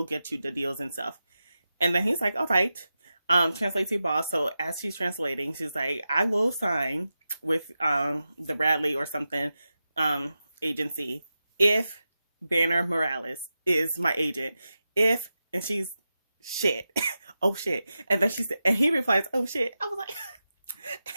get you the deals and stuff. And then he's like, all right, translate to your boss. So as she's translating, she's like, I will sign with the Bradley or something agency if Banner Morales is my agent. And she's, shit. Oh shit. And then and he replies, oh shit. I was like,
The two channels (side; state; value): both; inverted; correlation -0.91